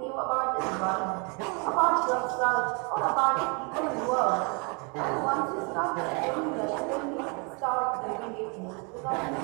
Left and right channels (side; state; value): left; quieter; 33.4 dB